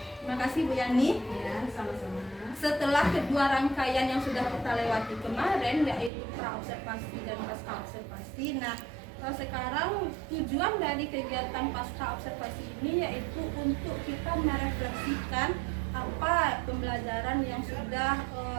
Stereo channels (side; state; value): left; drops out; at 6.1 s